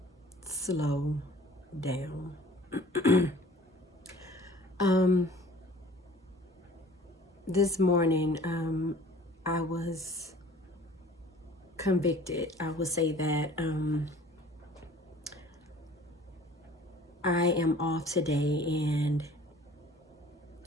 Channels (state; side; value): normal; both; correlation 0.48